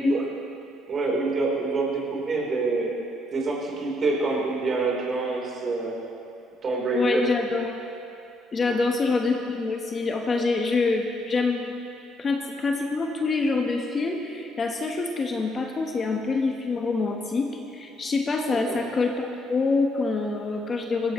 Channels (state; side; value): normal; both; correlation 0.75